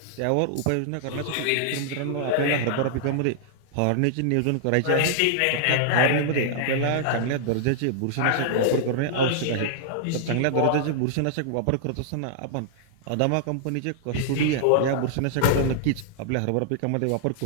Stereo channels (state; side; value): different; both; correlation -0.01